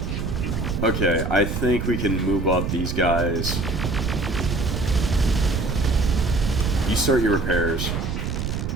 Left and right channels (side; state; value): right; noise; rumble, 2 dB below the sound